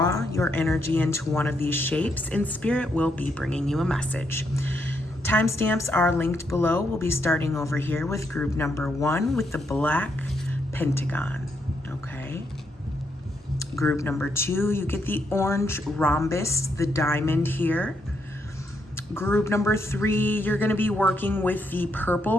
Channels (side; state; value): both; normal; correlation 0.78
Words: your energy into one of these shapes, and Spirit will be bringing you a message. Timestamps are linked below. We'll be starting over here with group number 1 with the black pentagon. Okay. Group number 2, you get the orange rhombus, the diamond here. Group number 3, you're going to be working with the